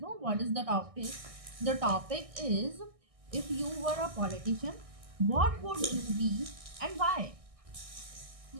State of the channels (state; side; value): late; left; 1.6 ms